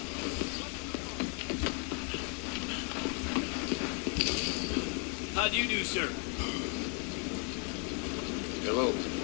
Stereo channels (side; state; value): right; quieter; 37.9 dB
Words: How do you do, sir? Hello.